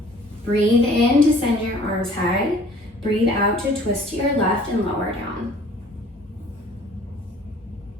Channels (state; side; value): normal; both; correlation 0.52